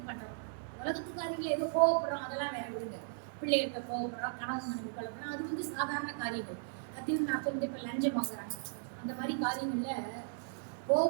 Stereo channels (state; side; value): silent; left; digital silence